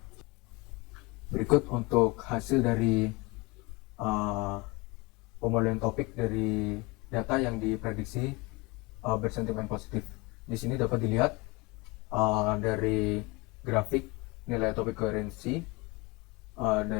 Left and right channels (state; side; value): quieter; right; 24.6 dB